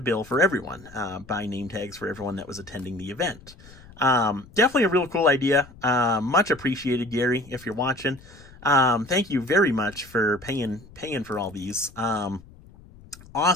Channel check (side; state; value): left; noise; rumble, 22 dB below the sound